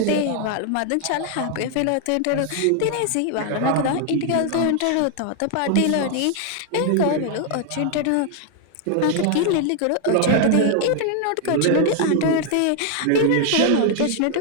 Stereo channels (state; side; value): different; both; correlation 0.00